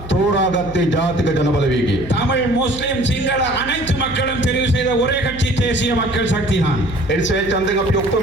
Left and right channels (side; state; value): right; noise; hum, 15 dB below the sound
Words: தோராகத்தை ஜாதிக ஜனபலவேகி தமிழ் முஸ்லிம் சிங்கள அனைத்து மக்களும் தெரிவு செய்த ஒரே கட்சி தேசிய மக்கள் சக்தி தான். එනිසා ඡන්දෙන් අපි